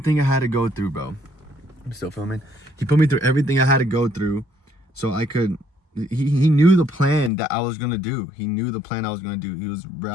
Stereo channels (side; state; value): right; drops out; at 7.3 s